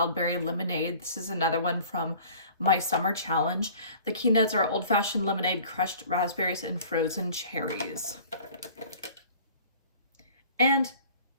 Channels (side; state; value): both; inverted; correlation -0.48